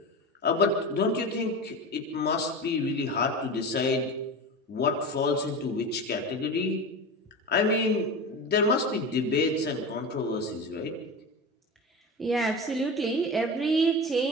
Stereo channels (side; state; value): both; normal; correlation 0.27